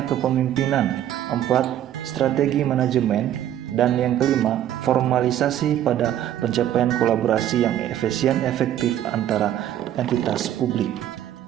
kepemimpinan. 4. Strategi manajemen. Dan yang kelima, formalisasi pada pencapaian kolaborasi yang efisien efektif antara entitas publik.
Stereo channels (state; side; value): quieter; left; 11.4 dB